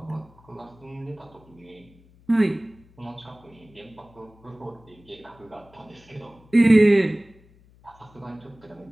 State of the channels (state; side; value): noise; left; hum, 27 dB below the sound